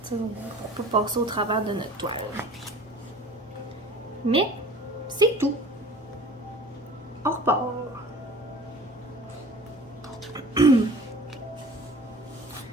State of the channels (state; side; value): normal; both; correlation 0.44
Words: Pour pas passer au travers de notre toile. Mais c'est tout. On repart.